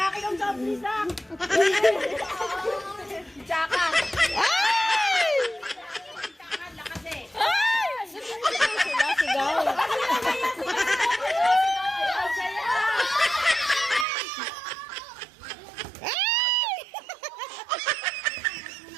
ng soft drinks lang. Tsaka. Sigaw.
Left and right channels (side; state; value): left; drops out; at 14.1 s